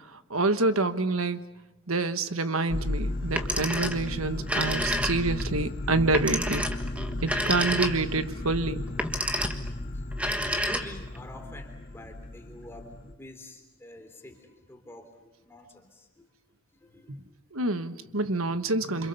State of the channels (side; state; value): both; normal; correlation 0.27